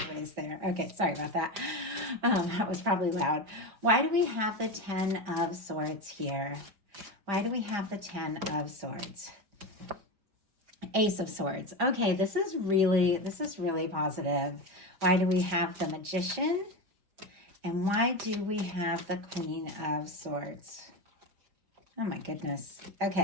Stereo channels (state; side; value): late; left; 5.0 ms